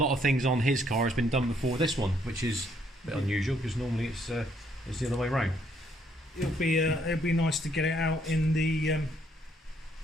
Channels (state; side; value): normal; both; correlation 0.69